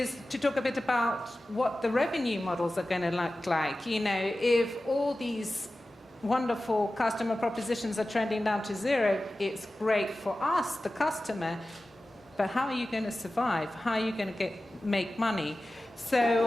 to talk a bit about what the revenue models are going to look like. You know, if all these wonderful customer propositions are trending down to 0, it's great for us, the customer, but how are you going to survive? How are you going to make money?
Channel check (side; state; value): both; normal; correlation 0.95